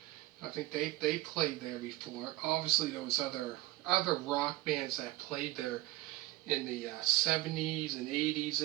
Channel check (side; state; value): left; quieter; 17.0 dB